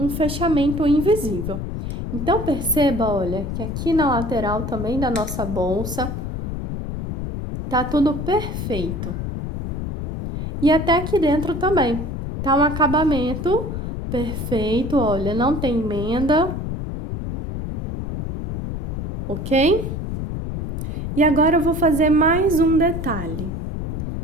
fechamento invisível. Então, perceba, olha, que aqui na lateral também da nossa bolsa tá tudo perfeito. E até aqui dentro também, tá um acabamento perfeito, olha, não tem emenda, ok? E agora eu vou fazer mais um detalhe.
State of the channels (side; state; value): left; noise; rumble, 4 dB below the sound